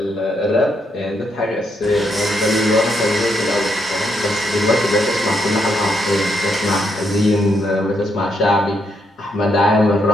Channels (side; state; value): both; normal; correlation 0.78